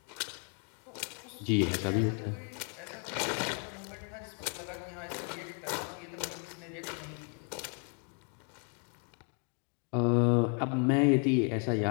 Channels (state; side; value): quieter; right; 38.1 dB